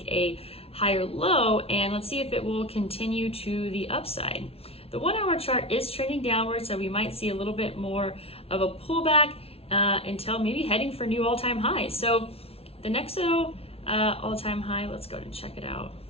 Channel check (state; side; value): late; right; 0.29 ms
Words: a higher low, and let's see if it will continue to the upside. The 1-hour chart is trending downward, so we might see a little bit more of a pullback until maybe heading for new all-time highs. So the Nexo all-time high, let's go ahead and check it out.